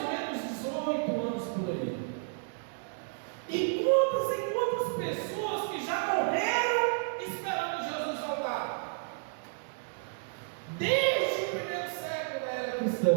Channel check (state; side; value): silent; left; digital silence